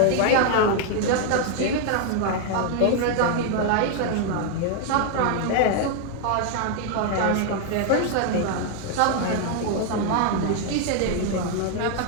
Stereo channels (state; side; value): different; both; correlation 0.00